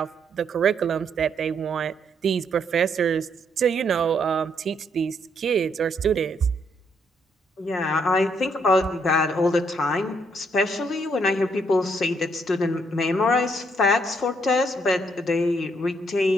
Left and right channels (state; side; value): normal; both; correlation 0.72